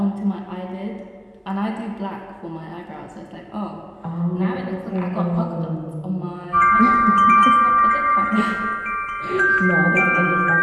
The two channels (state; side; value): identical; both; correlation 1.00